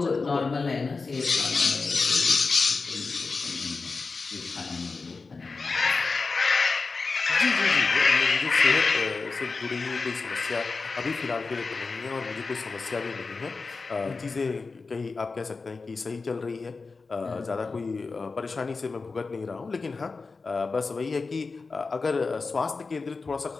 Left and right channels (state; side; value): quieter; right; 4.2 dB